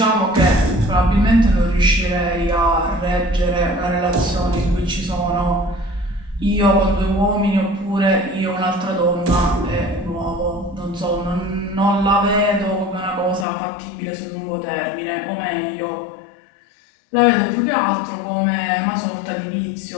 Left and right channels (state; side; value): drops out; right; at 13.5 s